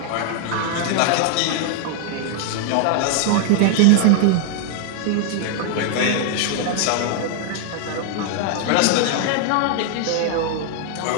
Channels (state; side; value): different; both; correlation 0.00